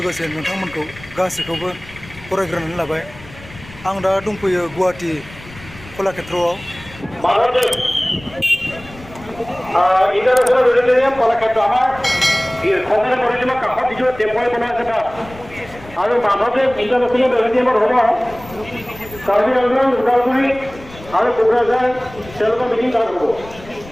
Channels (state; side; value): noise; left; rumble, 19 dB below the sound